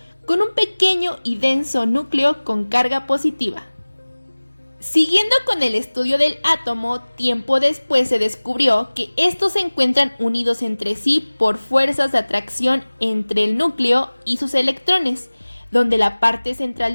con un pequeño y denso núcleo con carga positiva. Siguiendo con el estudio del átomo, tiempo después se descubrió que estos se encuentran unidos entre sí por fuerzas de atracción entre el núcleo y sus electrones, donde la parte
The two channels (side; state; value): both; inverted; correlation -1.00